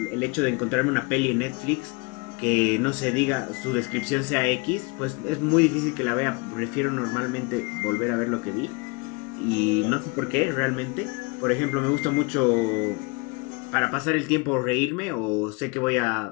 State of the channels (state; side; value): quieter; right; 29.5 dB